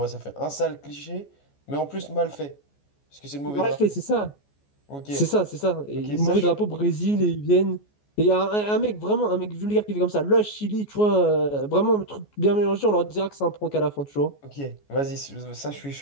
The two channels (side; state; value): right; late; 14 ms